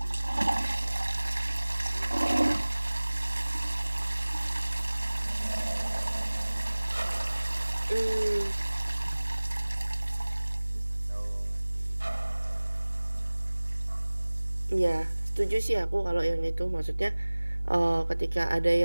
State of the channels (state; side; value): inverted; both; correlation -1.00